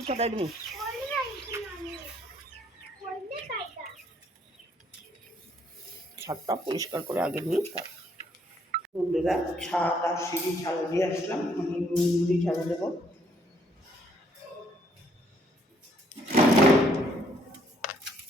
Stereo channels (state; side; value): normal; both; correlation 0.67